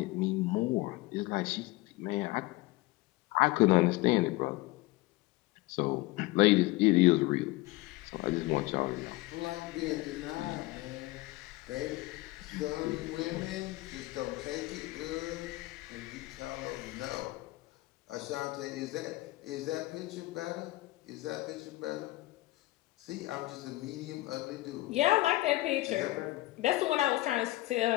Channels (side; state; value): right; quieter; 19.4 dB